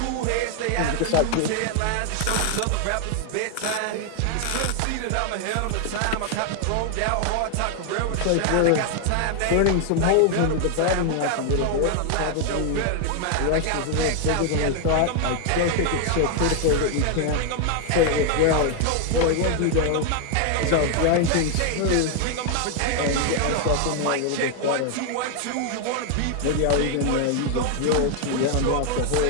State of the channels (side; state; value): both; different; correlation 0.00